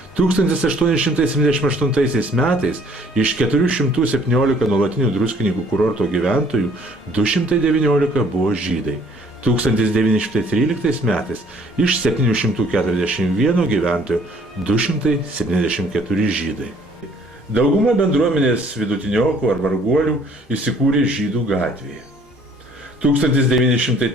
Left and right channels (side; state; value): both; normal; correlation 0.59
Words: 1878 metais iš 417 nuolatinių Druskininkų kurorto gyventojų 219 buvo žydai. 1913 metais iš 741 gyventojų 274 žydai. Dauguma bendruomenės vidutiniokų ar varguolių įsikūrė Žydų gatvėje.